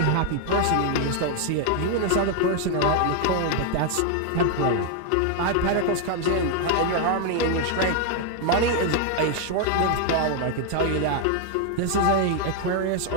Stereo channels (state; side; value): different; both; correlation 0.00